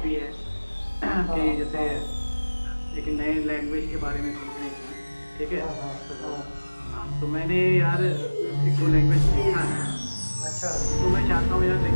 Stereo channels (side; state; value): both; inverted; correlation -1.00